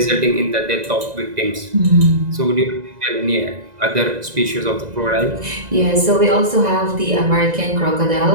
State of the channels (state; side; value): late; left; 2.0 ms